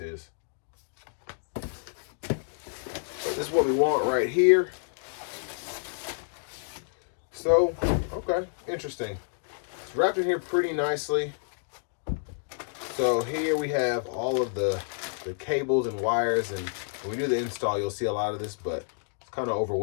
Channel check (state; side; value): silent; right; digital silence